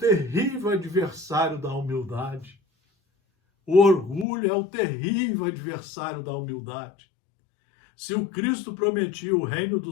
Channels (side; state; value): right; drops out; at 4.2 s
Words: adversário da humildade. O orgulho é o terrível adversário da humildade. Se o Cristo prometia o reino